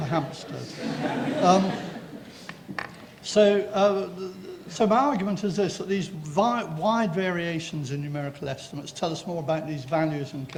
Hampstead. So my argument is this, that these wide variations in numerical estimates tell us more about these values and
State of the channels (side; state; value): both; identical; correlation 1.00